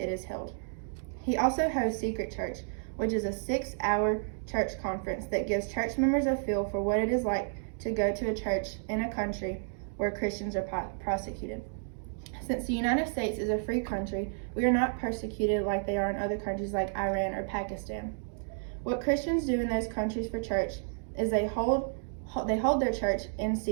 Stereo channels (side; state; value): left; silent; digital silence